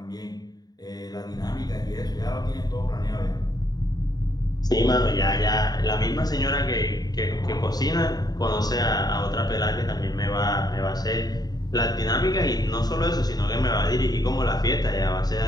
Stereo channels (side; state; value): right; late; 0.19 ms